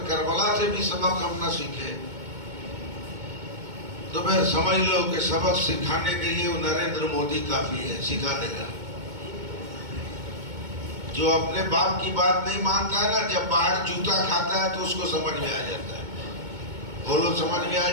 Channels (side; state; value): left; late; 2.2 ms